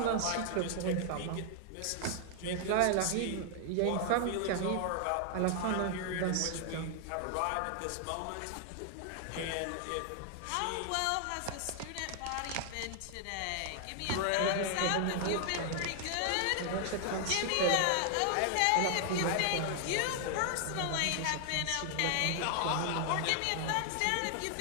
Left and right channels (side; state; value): both; different; correlation 0.00